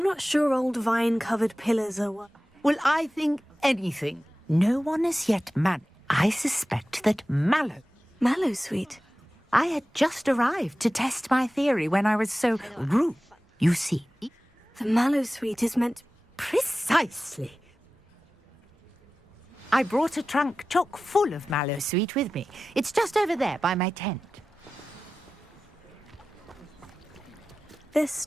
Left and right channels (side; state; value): both; normal; correlation 0.95